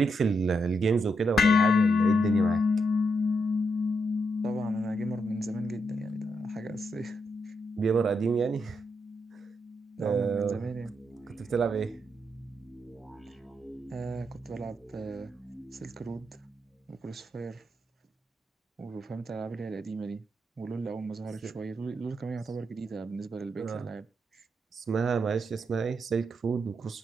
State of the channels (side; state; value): both; normal; correlation 0.81